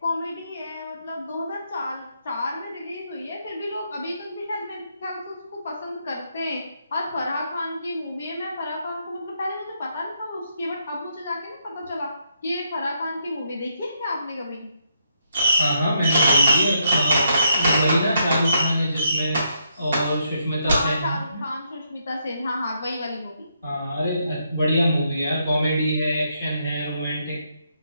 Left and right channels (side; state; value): both; inverted; correlation -0.76